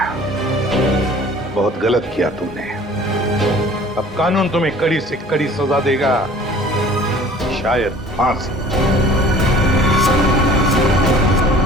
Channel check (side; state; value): both; normal; correlation 0.49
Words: बहुत गलत किया तुमने। अब कानून तुम्हें कड़ी से कड़ी सजा देगा, शायद फांसी।